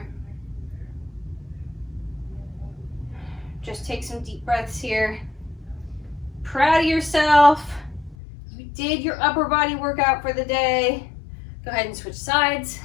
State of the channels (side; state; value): right; drops out; at 8.2 s